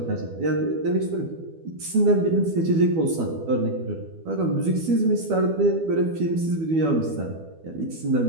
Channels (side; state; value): left; late; 12 ms